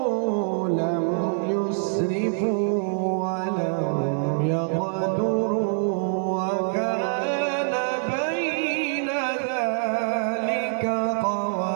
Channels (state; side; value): silent; left; 62 dB below the other